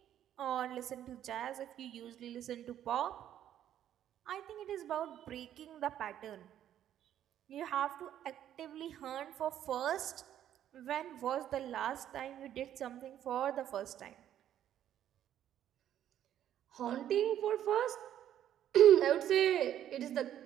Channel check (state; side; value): quieter; left; 11.0 dB